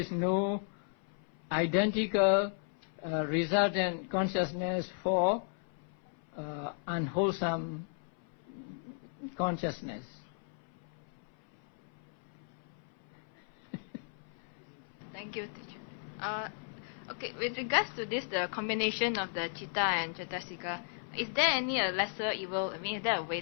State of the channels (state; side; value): silent; right; 54 dB below the other